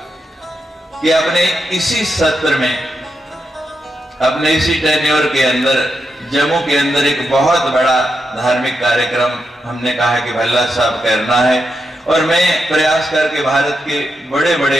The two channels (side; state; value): both; normal; correlation 0.85